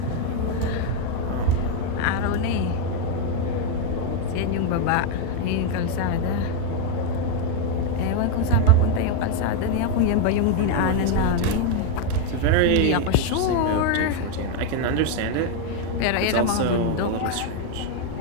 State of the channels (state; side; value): different; both; correlation 0.01